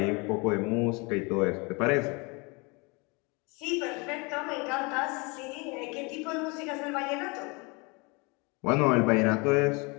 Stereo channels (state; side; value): quieter; right; 28.8 dB